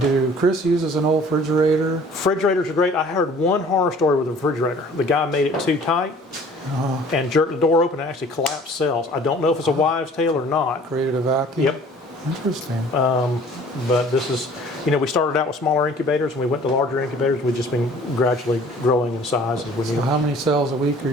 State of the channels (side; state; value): both; normal; correlation 0.50